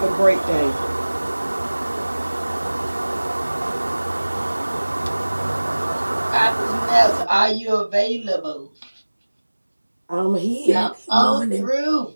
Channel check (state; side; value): inverted; both; correlation -1.00